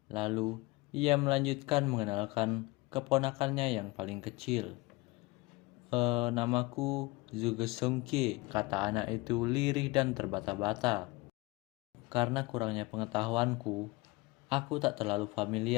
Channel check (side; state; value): right; quieter; 23.1 dB